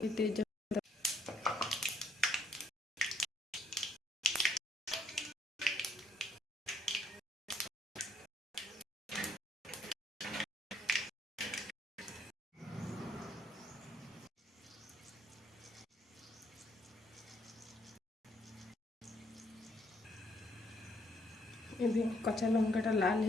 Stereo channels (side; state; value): both; normal; correlation 0.70